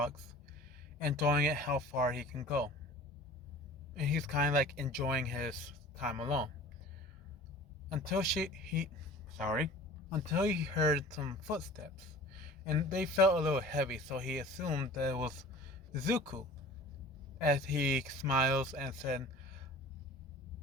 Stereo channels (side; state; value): both; normal; correlation 0.42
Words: enjoying it how far he can go. And he's kind of like enjoying his time alone. Until until he heard some footsteps, and they felt a little heavy, so he assumed that it was Zuko. As he smiles and said,